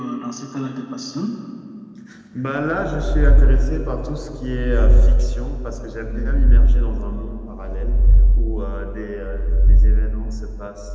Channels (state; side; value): identical; both; correlation 1.00